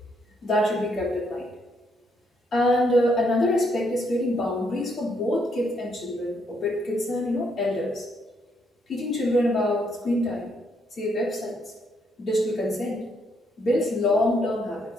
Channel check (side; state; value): both; normal; correlation 0.74